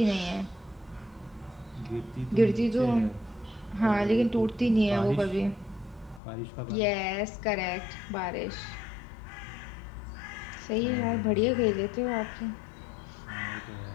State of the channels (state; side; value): drops out; right; at 6.2 s